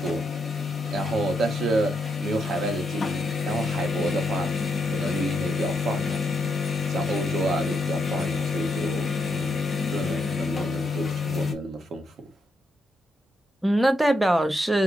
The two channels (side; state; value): both; normal; correlation 0.80